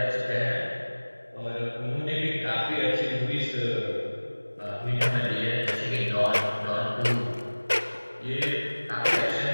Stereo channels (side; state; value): both; inverted; correlation -1.00